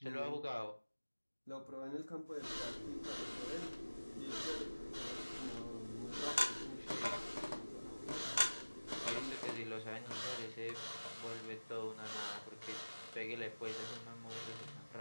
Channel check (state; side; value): inverted; both; correlation -1.00